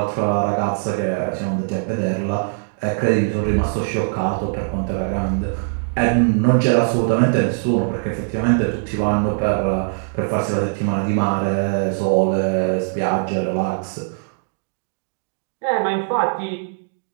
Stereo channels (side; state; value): left; silent; digital silence